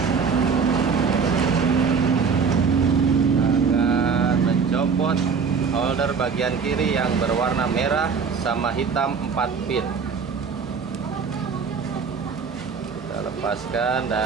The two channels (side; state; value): left; quieter; 5.7 dB